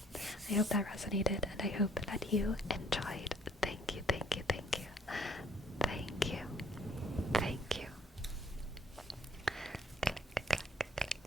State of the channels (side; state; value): both; normal; correlation 0.61